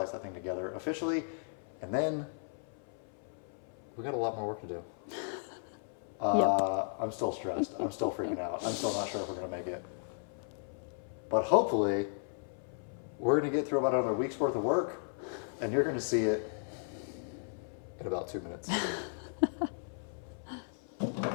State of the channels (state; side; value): silent; right; 54 dB below the other